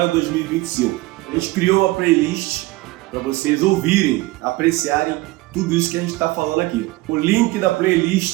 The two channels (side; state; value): left; quieter; 20.4 dB